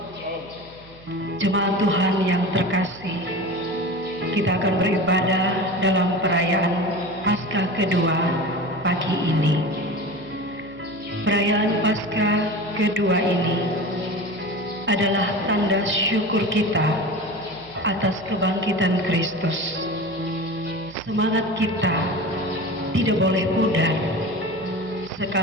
jemaat Tuhan yang terkasih. Kita akan beribadah dalam perayaan Paskah kedua pagi ini. Perayaan Paskah kedua ini adalah tanda syukur kita atas kebangkitan Kristus. Semangat kita tidak boleh pudar,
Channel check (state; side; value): noise; right; hum, 24 dB below the sound